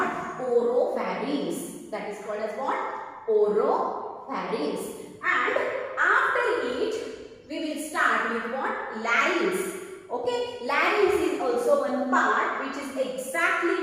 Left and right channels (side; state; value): both; identical; correlation 1.00